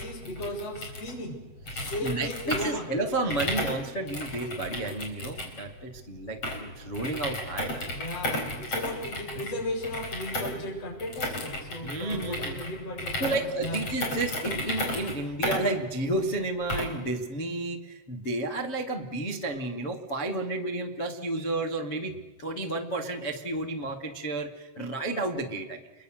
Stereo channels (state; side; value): late; right; 7.7 ms